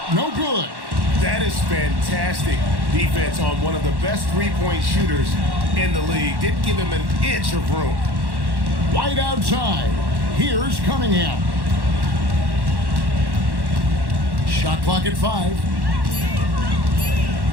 no good. That is fantastic defense on one of the best three-point shooters in the league. Didn't give him an inch of room. White outside. Here's Cunningham. Shot clock at 5.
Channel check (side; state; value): left; late; 1.1 ms